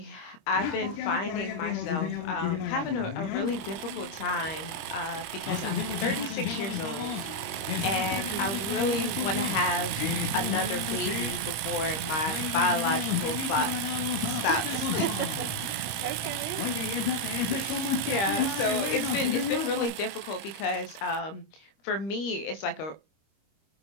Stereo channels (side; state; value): right; late; 24 ms